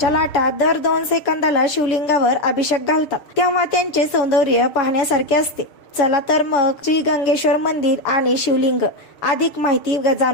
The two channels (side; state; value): right; late; 6.8 ms